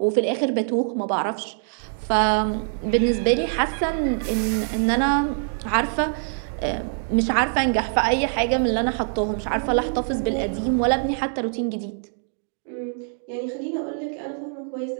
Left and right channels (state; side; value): silent; left; 63 dB below the other